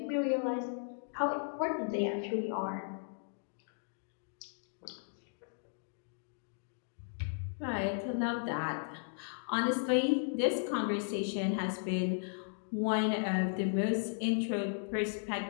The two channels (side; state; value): right; silent; digital silence